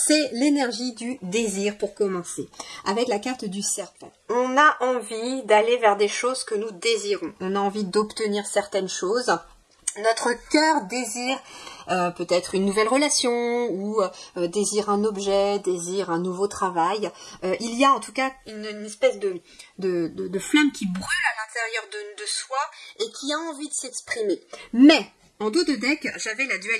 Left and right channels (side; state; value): both; identical; correlation 1.00